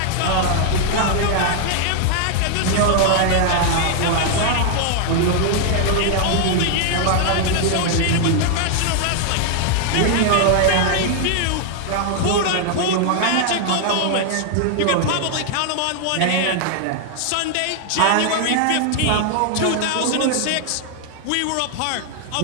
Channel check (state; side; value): different; both; correlation 0.00